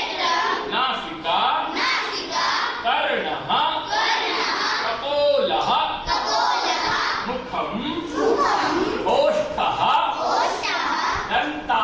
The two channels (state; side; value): identical; both; correlation 1.00